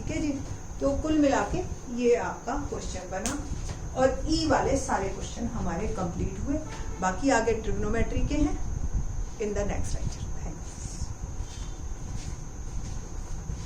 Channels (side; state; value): both; identical; correlation 1.00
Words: है जी, तो कुल मिला के ये आपका क्वेश्चन बना और ई वाले सारे क्वेश्चन हमारे कंप्लीट हुए। बाकी आगे ट्रिग्नोमेट्री के हैं इन द नेक्स्ट लेक्चर।